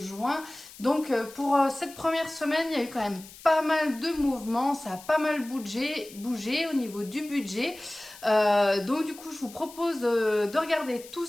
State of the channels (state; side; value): noise; left; hiss, 18 dB below the sound